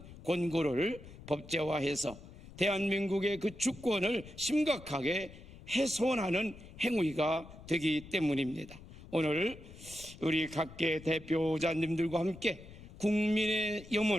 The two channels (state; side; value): noise; left; rumble, 17 dB below the sound